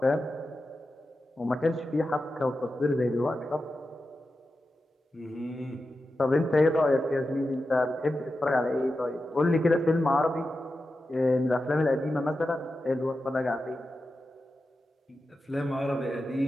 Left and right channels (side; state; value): both; normal; correlation 0.91